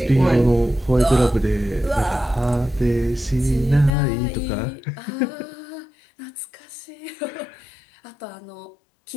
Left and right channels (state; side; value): drops out; right; at 3.9 s